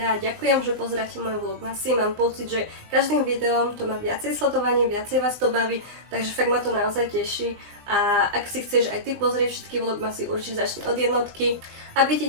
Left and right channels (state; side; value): late; left; 20 ms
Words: Ďakujem, že pozeráte moje vlogmasy. Mám pocit, že každým videom to má viacej sledovaní, viacej vás to baví, takže fakt ma to naozaj teší. A ak si chceš aj ty pozrieť všetky vlogmasy, určite začni od jednotky. Aby ti